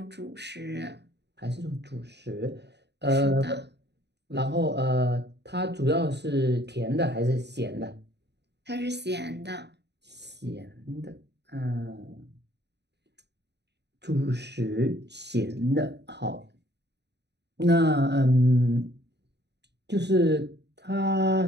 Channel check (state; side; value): late; left; 0.50 ms